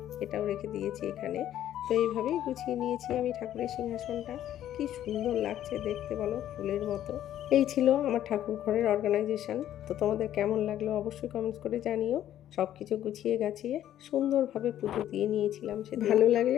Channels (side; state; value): right; quieter; 11.7 dB